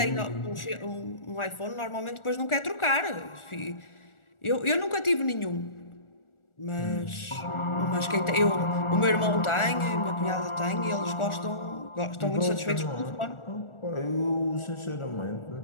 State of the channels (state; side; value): late; right; 1.4 ms